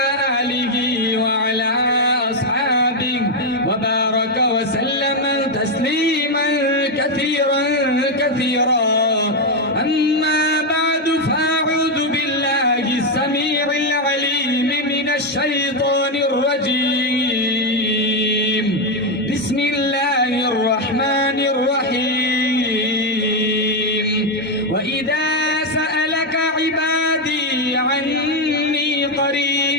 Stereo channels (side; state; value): both; normal; correlation 0.04